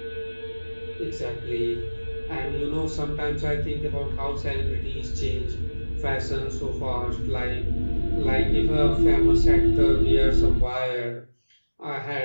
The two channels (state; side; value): inverted; both; correlation -1.00